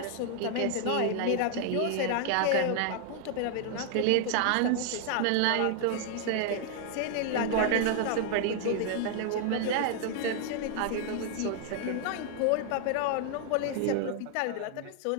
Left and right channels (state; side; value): different; both; correlation 0.00